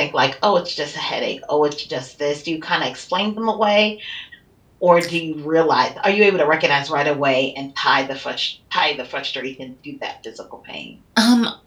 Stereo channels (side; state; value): both; identical; correlation 1.00